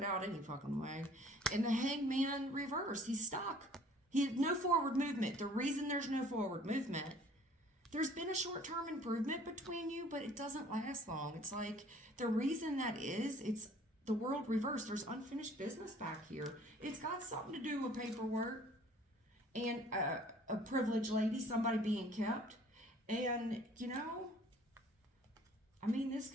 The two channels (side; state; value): both; normal; correlation 0.53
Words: out any fucking way. And the Hangman reverse. He's stuck. He had no forward movement. The reason there's no forward movement, there's been a short-term improvement between you, but it doesn't last long. It's like the reason that is, it's the world reversed. There's unfinished business back here. It's got something to do with paperwork and a privileged lady, somebody being kept. And, you know, I mean, this